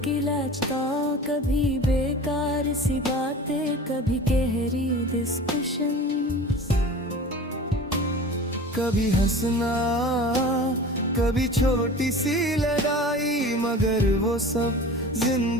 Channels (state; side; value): normal; both; correlation 0.38